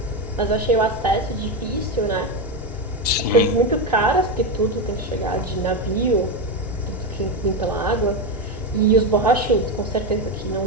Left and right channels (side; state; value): both; normal; correlation 0.12